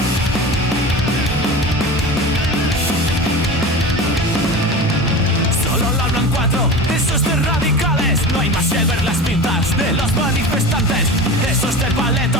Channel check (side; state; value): both; normal; correlation 0.31